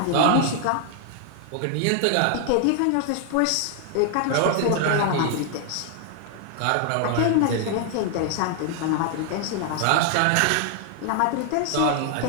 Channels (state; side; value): different; both; correlation 0.00